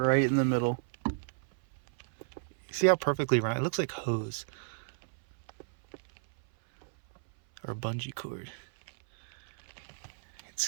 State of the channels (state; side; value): silent; left; 56 dB below the other